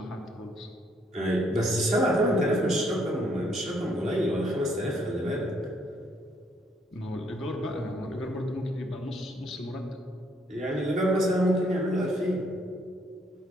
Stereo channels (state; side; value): normal; both; correlation 0.68